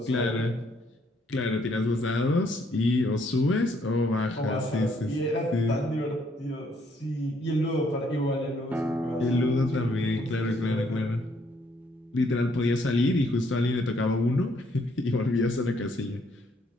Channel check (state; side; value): normal; both; correlation 0.69